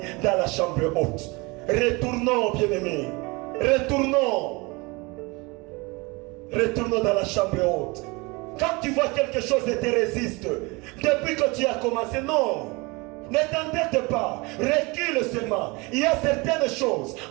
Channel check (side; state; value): left; quieter; 26.0 dB